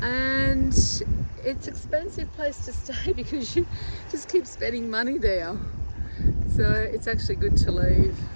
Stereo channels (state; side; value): inverted; both; correlation -1.00